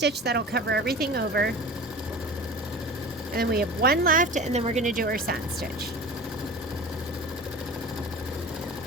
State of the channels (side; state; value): both; normal; correlation 0.36